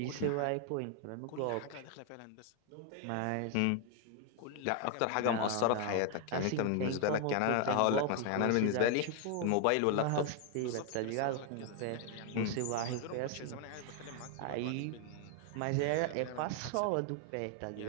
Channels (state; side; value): different; both; correlation 0.00